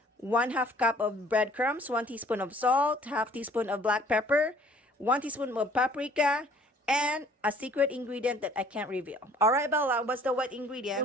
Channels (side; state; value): both; normal; correlation 0.55